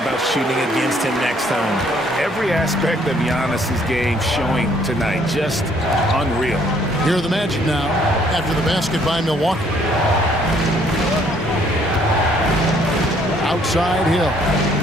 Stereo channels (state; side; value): normal; both; correlation 0.64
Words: shooting against him next time. Every aspect of Giannis' game showing tonight. Just unreal. Here are the Magic now after the basket by Milwaukee. Outside Hill.